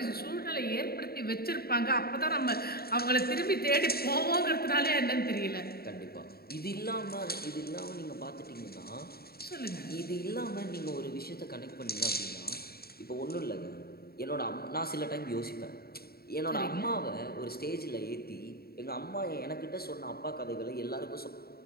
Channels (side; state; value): right; late; 0.45 ms